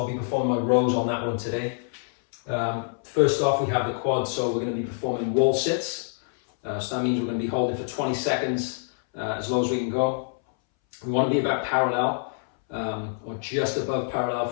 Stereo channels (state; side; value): silent; right; 61 dB below the other